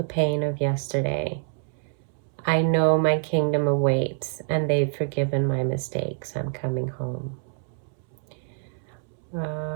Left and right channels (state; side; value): silent; left; 61 dB below the other